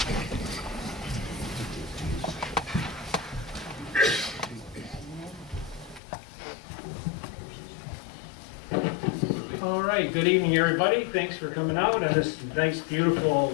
All right, good evening, everybody. Thanks for coming out on this nice,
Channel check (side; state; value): right; drops out; at 6.0 s